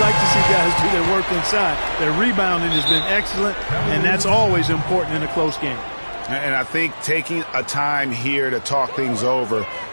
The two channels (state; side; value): inverted; both; correlation -1.00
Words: like to see guys do their work inside. Their rebounding has been excellent, and that's always important in a close game. And I think taking a time here to talk things over